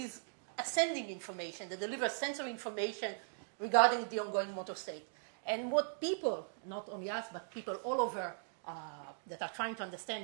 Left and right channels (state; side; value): silent; left; digital silence